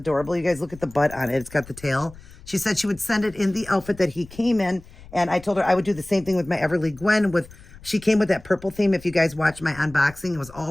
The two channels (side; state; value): left; noise; rumble, 20 dB below the sound